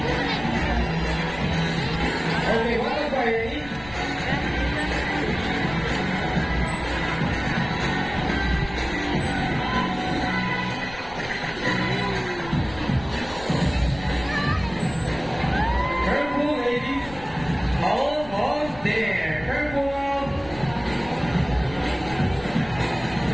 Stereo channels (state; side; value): noise; left; rumble, 16 dB below the sound